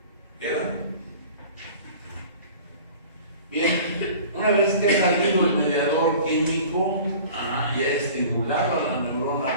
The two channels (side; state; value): both; inverted; correlation -0.43